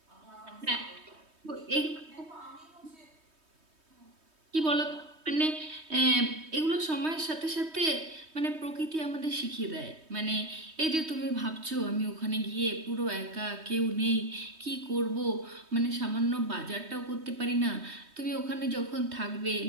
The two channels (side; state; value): left; late; 3.2 ms